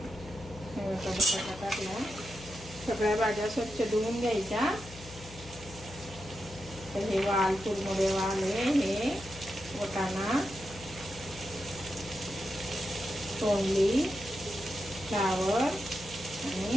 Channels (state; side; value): noise; left; hum, 16 dB below the sound